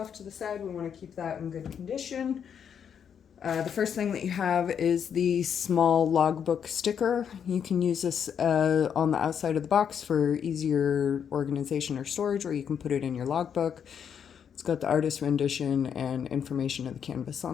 to the side. We want to keep that in good condition. The first thing that you have is the small logbook sticker. You can use this on the outside of the box for easier organization or storage, or you can put it in your logbook. It's got the artist rendition and information of the canvas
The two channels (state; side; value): quieter; right; 7.9 dB